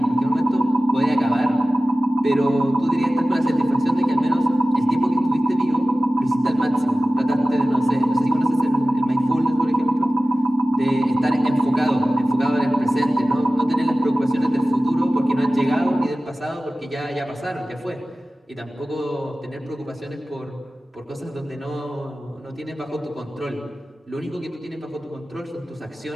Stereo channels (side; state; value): both; normal; correlation 0.96